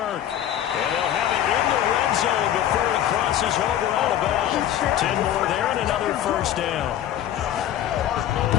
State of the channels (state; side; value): quieter; right; 11.4 dB